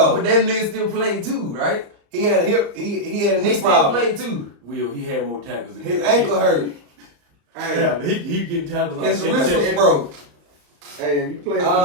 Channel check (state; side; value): late; left; 34 ms